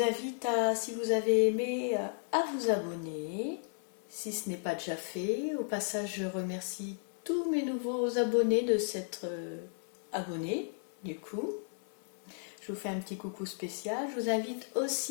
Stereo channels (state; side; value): silent; right; digital silence